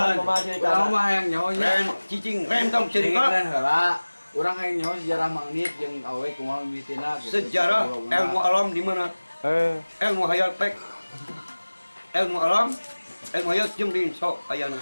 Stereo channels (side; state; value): both; inverted; correlation -1.00